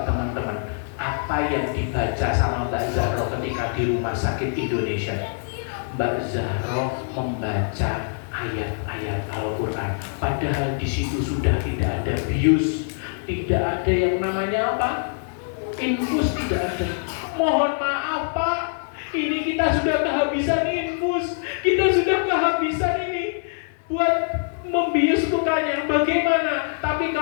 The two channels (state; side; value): silent; right; 63 dB below the other